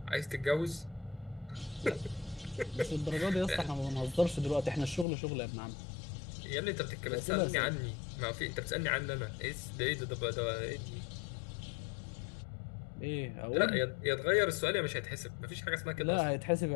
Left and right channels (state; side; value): drops out; right; at 5.1 s